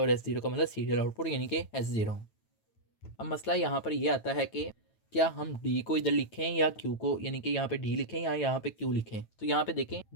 S0 का मतलब सीरियल आउटपुट यानी कि S0। अब मसला यहाँ पर ये आता है कि क्या हम डी को इधर लिखें या क्यू को, यानी कि यहाँ पे डी लिखें या यहाँ पे क्यू लिखें। तो यहाँ पे देखें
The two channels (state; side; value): late; right; 9.1 ms